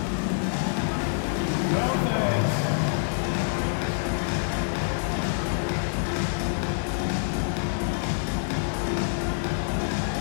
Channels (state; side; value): silent; right; digital silence